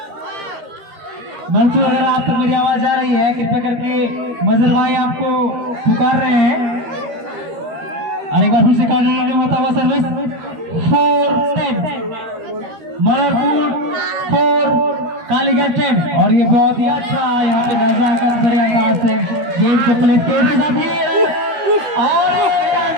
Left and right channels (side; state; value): left; late; 13 ms